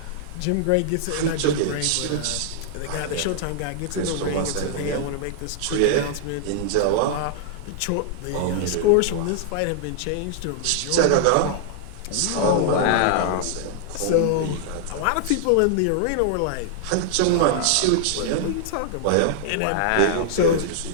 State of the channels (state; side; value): different; both; correlation -0.01